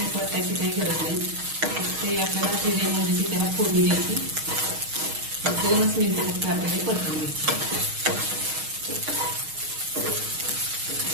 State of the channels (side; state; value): left; late; 6.4 ms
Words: परतायची काही गरज नाही. ते आपल्याला जिरे मोहरीची त्याला फोडणी द्यायची. 2च मिनिटं फक्त आपल्याला परतून घ्यायची.